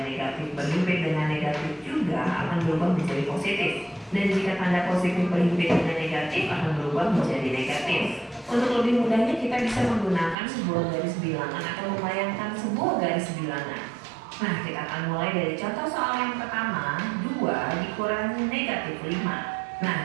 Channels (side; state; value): left; drops out; at 10.4 s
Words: negatif berhimpit dengan negatif juga akan berubah menjadi positif. Dan jika tanda positif berhimpit dengan negatif akan berubah menjadi negatif. Untuk lebih mudahnya kita bisa menggunakan sebuah garis bilangan atau membayangkan sebuah garis bilangan. Nah, kita akan mulai dari contoh soal yang pertama, 2 dikurangi negatif 5. Nah,